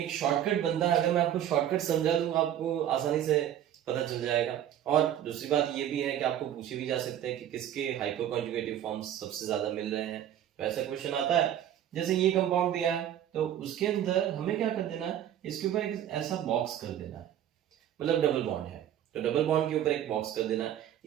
शॉर्टकट बनता है, अगर मैं आपको शॉर्टकट समझा दूं आपको आसानी से पता चल जाएगा। और दूसरी बात ये भी है कि आपको पूछे भी जा सकते हैं कि किसके हाइपर कॉन्जुगेटिव फॉर्म्स सबसे ज्यादा मिल रहे हैं। तो ऐसा क्वेश्चन आता है, जैसे ये कंपाउंड दिया है तो उसके अंदर हमें क्या कर देना है, इसके ऊपर एक ऐसा बॉक्स कर देना है, मतलब डबल बॉन्ड है तो डबल बॉन्ड के ऊपर एक बॉक्स कर देना है।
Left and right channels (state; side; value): quieter; left; 11.0 dB